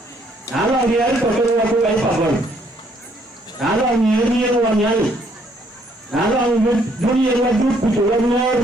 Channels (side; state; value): both; normal; correlation 0.68